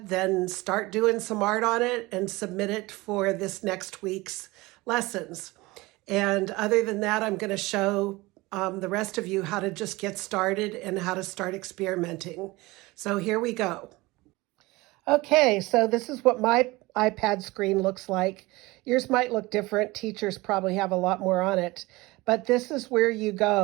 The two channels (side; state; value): left; quieter; 21.6 dB